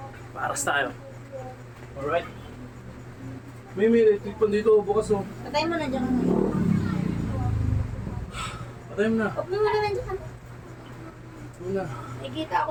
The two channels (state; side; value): identical; both; correlation 1.00